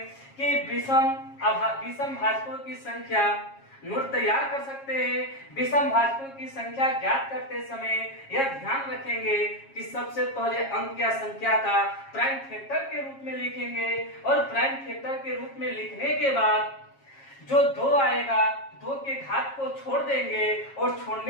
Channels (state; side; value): late; right; 7.3 ms